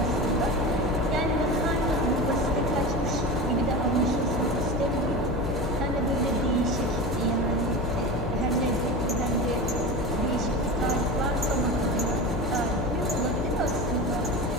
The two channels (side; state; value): left; noise; hum, 4 dB below the sound